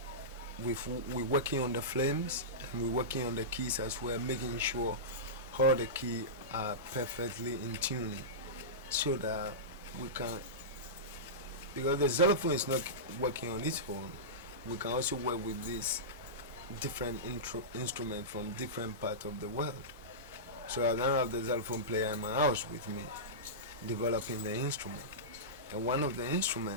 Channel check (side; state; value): both; normal; correlation -0.17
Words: we're working on the flames and we're working on the keys as well, making sure all the keys are perfectly in tune, so that we can, because the xylophone is not working on its own, we can also work with this different instrument from different parts of the world. So I now have the xylophone player in my house with me, developing the instrument. And one of the